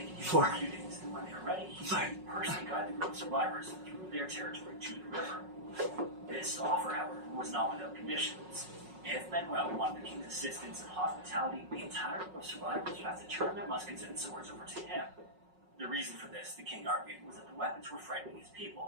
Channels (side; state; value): left; late; 5.4 ms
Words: could use for a few days, and when when they were ready, he would personally guide the group of survivors through their territory to the river. This offer, however, was not without conditions. If Manuel wanted the king's assistance and hospitality, the entire group of survivors would have to turn their muskets and swords over to him. The reason for this, the king argued, was that the weapons were frightening his